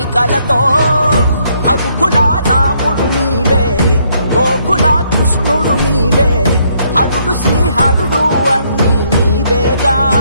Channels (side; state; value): both; inverted; correlation -0.70